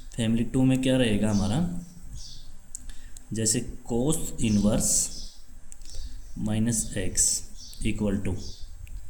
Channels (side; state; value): both; identical; correlation 1.00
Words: फैमिली 2 में क्या रहेगा हमारा, जैसे cos inverse -x equal to